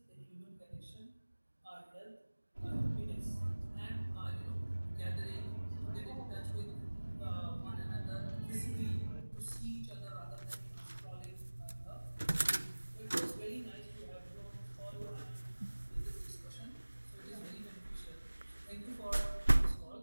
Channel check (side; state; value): both; inverted; correlation -1.00